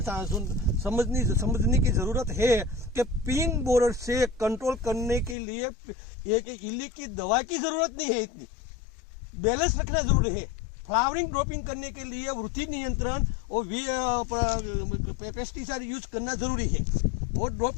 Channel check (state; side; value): drops out; right; at 5.4 s